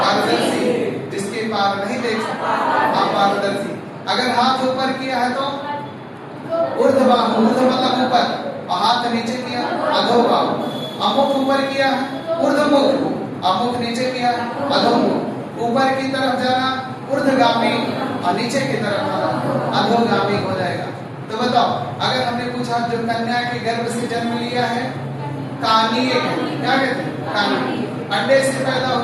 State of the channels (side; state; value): both; identical; correlation 1.00